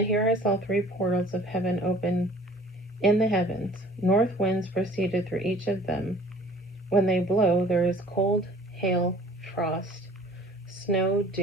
here I saw 3 portals of heaven open in the heavens. North winds proceeded through each of them. When they blow, there is cold, hail, frost, snow,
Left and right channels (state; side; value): normal; both; correlation 0.50